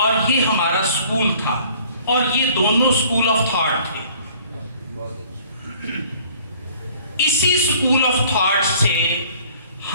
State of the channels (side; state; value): both; inverted; correlation -0.54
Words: اور یہ ہمارا سکول تھا اور یہ دونوں سکول آف تھاٹ تھے. اسی سکول آف تھاٹ سے